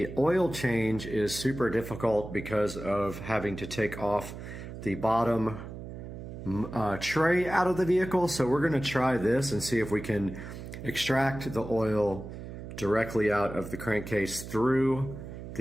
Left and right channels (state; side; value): noise; right; hum, 10 dB below the sound